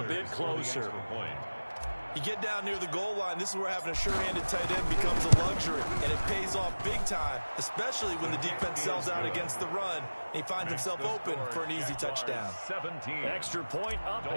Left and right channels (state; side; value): inverted; both; correlation -1.00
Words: a bit closer. You get down near the goal line, this is where having a sure-handed tight end becomes a luxury, and it pays off big time, especially when the defense sells out against the run, and he finds himself open for an easy touchdown. 17. Extra point up